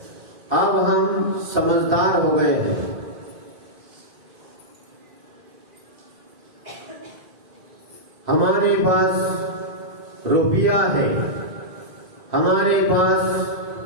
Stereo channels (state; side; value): late; left; 2.5 ms